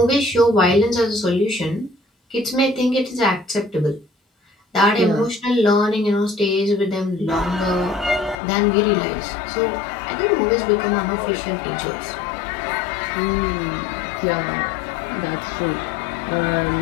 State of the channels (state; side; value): drops out; right; at 8.3 s